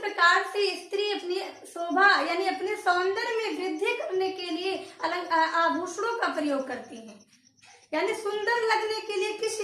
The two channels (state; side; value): identical; both; correlation 1.00